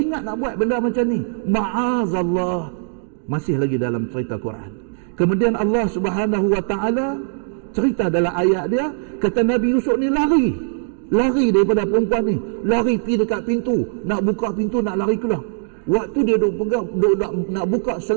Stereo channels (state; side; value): silent; left; 65 dB below the other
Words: nak buat benda macam ni. Ma'azallah. Masih lagi dalam cerita Quran. Kemudian Allah Subhanahu wa ta'ala cerita dalam ayat dia, kata Nabi Yusuf ni lari daripada perempuan ni, lari pergi dekat pintu, nak buka pintu, nak lari keluar. Waktu dia duk nak buka